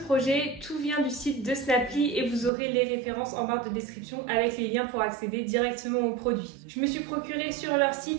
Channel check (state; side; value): drops out; left; at 2.5 s